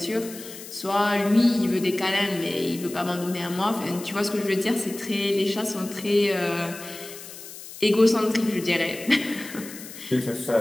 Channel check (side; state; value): left; noise; hiss, 14 dB below the sound